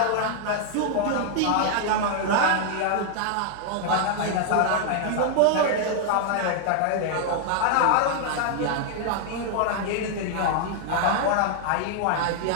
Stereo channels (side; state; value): both; different; correlation 0.00